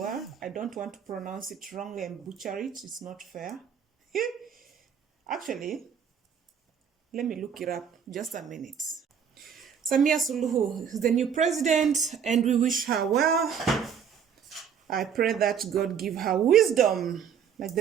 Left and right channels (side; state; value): left; quieter; 7.6 dB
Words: I don't want to pronounce it wrongly and butcher it. It's not fair. Actually, let me look it up. Just a minute. Samia Suluhu is the new president, and we wish her well. I pray that God give her wisdom, like